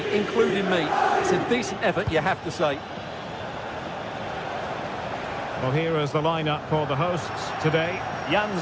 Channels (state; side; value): identical; both; correlation 1.00